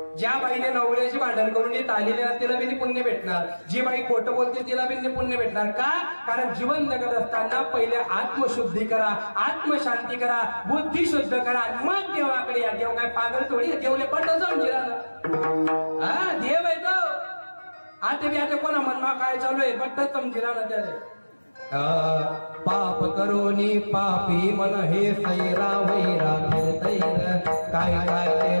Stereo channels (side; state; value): both; inverted; correlation -1.00